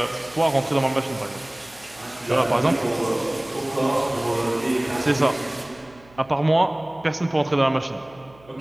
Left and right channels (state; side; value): noise; right; hum, 26 dB below the sound